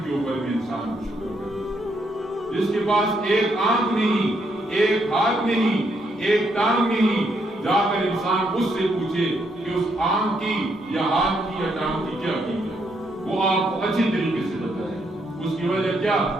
کے اوپر بھی انسان کو شکر کرے. جس کے پاس ایک آنکھ نہیں, ایک ہاتھ نہیں, ایک ٹانگ نہیں, جا کر انسان اس سے پوچھے کہ اس آنکھ کی یا ہاتھ کی یا ٹانگ کی کیا قیمت ہے, وہ آپ کو اچھی طریقے سے بتائے. اس کی وجہ کیا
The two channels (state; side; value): normal; both; correlation 0.75